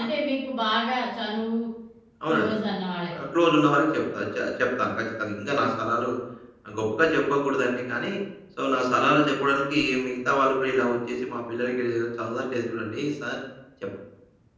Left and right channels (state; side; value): identical; both; correlation 1.00